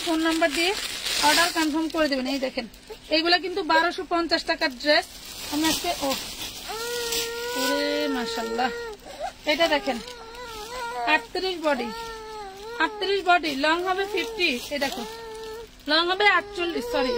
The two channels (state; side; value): identical; both; correlation 1.00